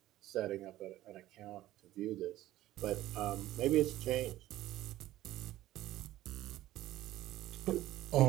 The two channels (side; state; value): left; quieter; 15.1 dB